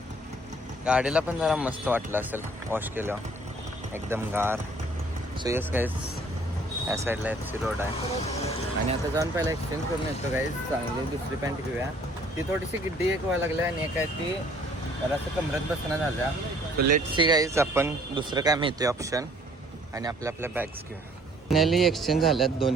गाडीला पण जरा मस्त वाटलं असेल वॉश केलं, एकदम गार. सो यस गाईज, या साईडला FC रोड आहे. आणि आता जाऊन पहिला एक्सचेंज करून येतो गाईज. चांगली दुसरी पॅन्ट घेऊया. ती थोडीशी गिड्डी एक व्हायला लागली आणि एक आहे ती जरासं कमरत बसणं झाल्या. सो लेट्स सी गाईज, आपण दुसरं काय मिळतोय ऑप्शन आणि आपल्या बॅग्स घेऊया. फायनली एक्सचेंज झाल्यात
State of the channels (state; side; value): normal; both; correlation 0.58